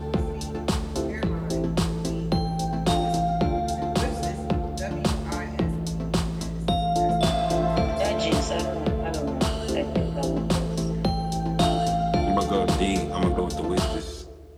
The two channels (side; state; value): both; identical; correlation 1.00